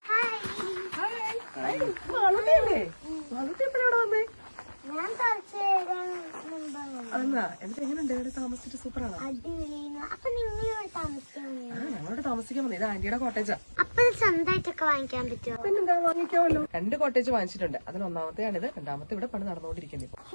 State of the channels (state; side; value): inverted; both; correlation -1.00